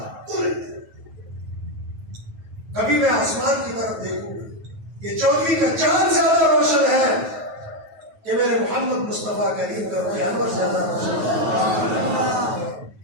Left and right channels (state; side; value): late; left; 9.3 ms